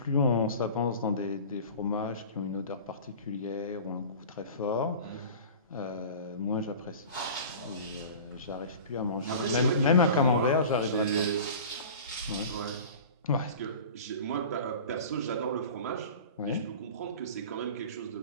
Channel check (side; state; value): both; inverted; correlation -0.38